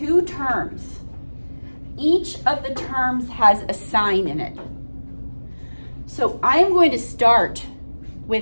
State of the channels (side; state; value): both; inverted; correlation -1.00